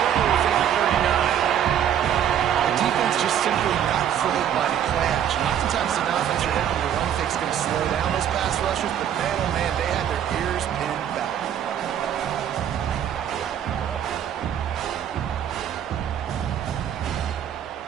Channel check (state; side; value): quieter; left; 9.7 dB